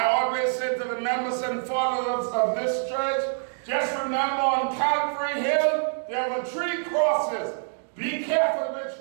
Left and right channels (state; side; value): silent; left; digital silence